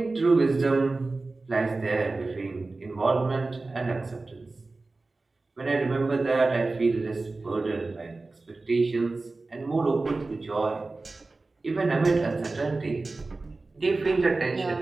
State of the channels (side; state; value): left; quieter; 3.4 dB